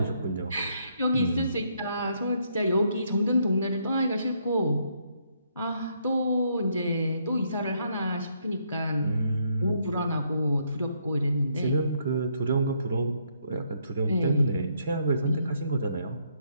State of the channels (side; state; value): both; inverted; correlation -0.73